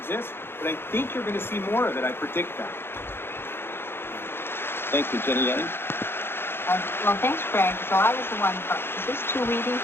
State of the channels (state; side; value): late; right; 0.11 ms